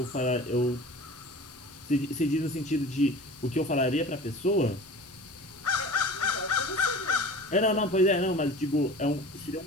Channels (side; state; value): both; normal; correlation 0.39